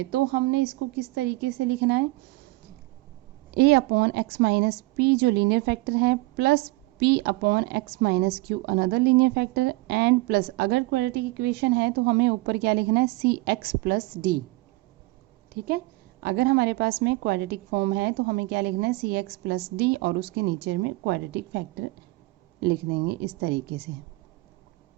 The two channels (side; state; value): left; quieter; 22.0 dB